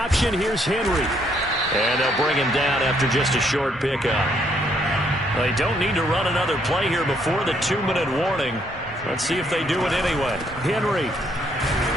here's Henry. And they'll bring him down after just a short pickup. They don't need to run another play here before the 2-minute warning. Let's see if they do it anyway. Henry.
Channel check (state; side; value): normal; both; correlation 0.70